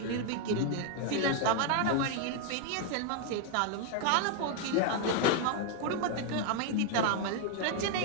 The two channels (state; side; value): different; both; correlation 0.00